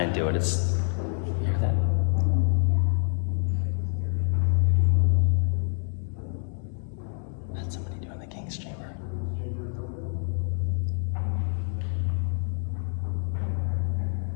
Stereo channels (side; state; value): right; silent; 56 dB below the other